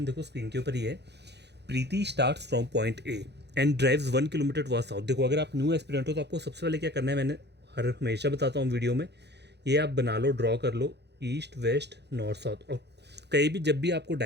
देखो स्क्रीन के ऊपर ही है। Preeti starts from point A and drives 1 kilometre towards south. देखो अगर आप न्यू एस्पिरेंट हो तो आपको सबसे पहले क्या करना है, मैंने हमेशा बताता हूँ वीडियो में, ये आप बना लो, ड्रॉ कर लो, ईस्ट वेस्ट नॉर्थ साउथ। और कहीं भी जब भी आपको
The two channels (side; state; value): left; late; 0.49 ms